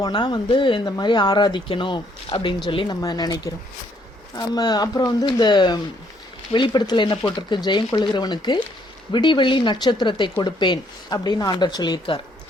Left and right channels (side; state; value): both; normal; correlation 0.68